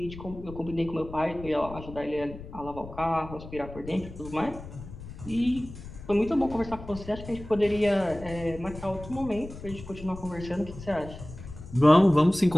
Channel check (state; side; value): noise; left; rumble, 13 dB below the sound